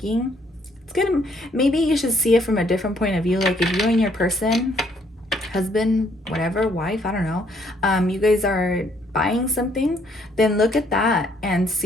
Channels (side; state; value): both; normal; correlation 0.67